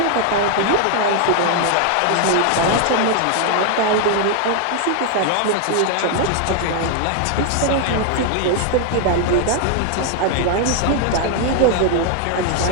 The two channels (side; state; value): both; different; correlation 0.00